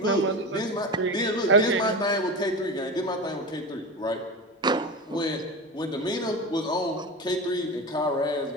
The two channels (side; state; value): both; normal; correlation 0.26